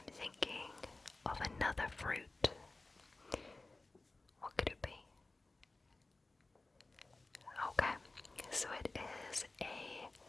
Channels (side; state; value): right; quieter; 3.2 dB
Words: thinking of another fruit. What could it be? Okay, so it is a